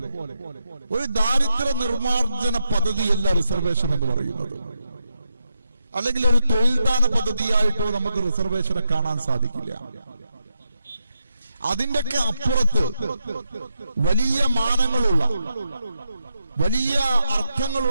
ഒരു ദാരിദ്ര്യ നിർമ്മാർജ്ജന പദ്ധതിയല്ല റിസർവേഷൻ എന്ന് പറയുന്നത്. അല്ലെങ്കിൽ ഒരു തൊഴിൽദാന പദ്ധതിയായിട്ടോ നമുക്ക് റിസർവേഷനെ കാണാൻ സാധിക്കില്ല. അതിന്റെയൊക്കെ അപ്പുറത്ത് വലിയ മാനങ്ങളുള്ള, വലിയ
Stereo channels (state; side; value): inverted; both; correlation -0.82